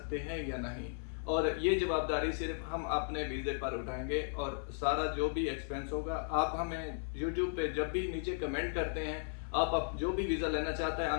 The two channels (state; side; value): silent; right; 54 dB below the other